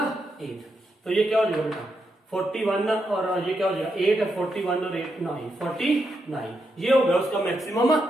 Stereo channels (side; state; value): both; normal; correlation 0.83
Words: 8, तो ये क्या हो जाएगा बेटा 41 और ये क्या हो जाएगा 8 41 और 8 9 49, ये हो गया उसका maximum